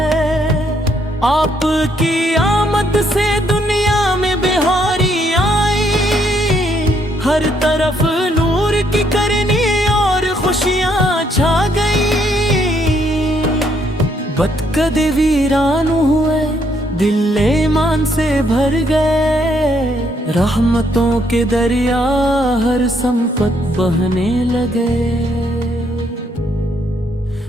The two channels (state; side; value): normal; both; correlation 0.71